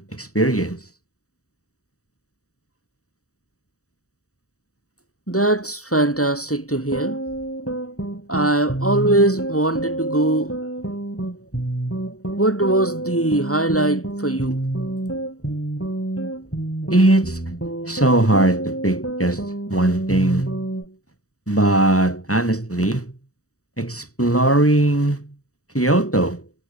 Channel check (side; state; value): right; late; 0.65 ms